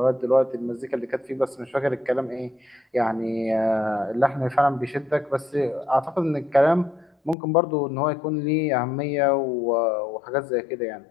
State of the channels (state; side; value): drops out; right; at 7.4 s